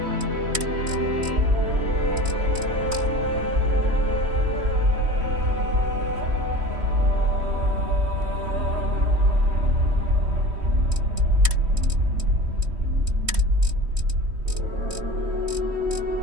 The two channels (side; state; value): left; late; 3.1 ms